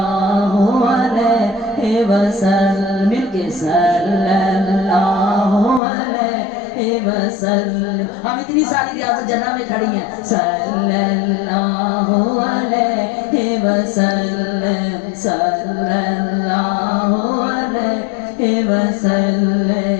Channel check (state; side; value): drops out; right; at 5.8 s